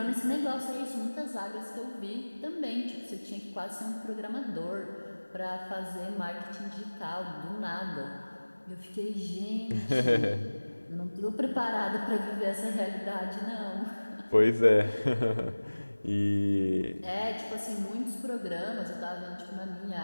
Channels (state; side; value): inverted; both; correlation -1.00